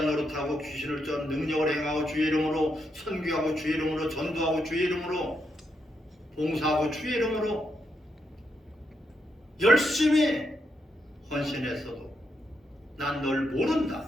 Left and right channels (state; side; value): normal; both; correlation 0.81